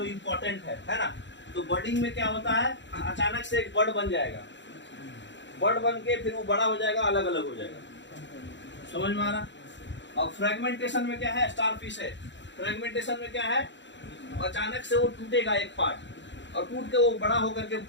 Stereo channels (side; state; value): right; late; 0.53 ms